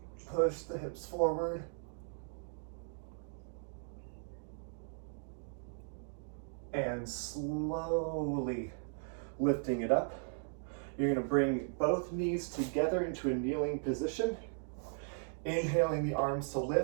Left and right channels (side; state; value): left; silent; digital silence